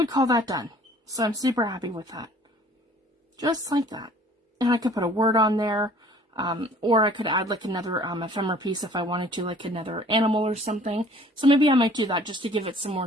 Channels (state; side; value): normal; both; correlation 0.52